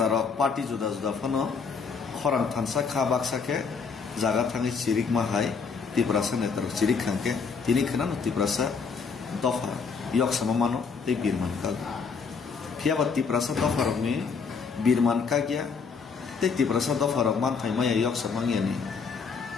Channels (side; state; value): right; quieter; 5.4 dB